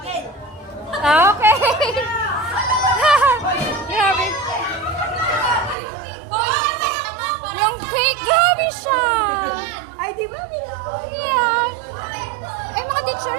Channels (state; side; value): drops out; left; at 5.8 s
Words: Okay. Grabe. Yung cake, grabe siya. Ay, di ba? Yeah. Ay, mga